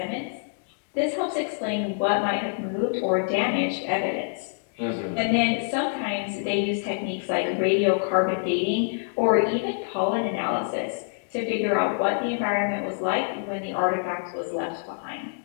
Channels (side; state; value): right; silent; digital silence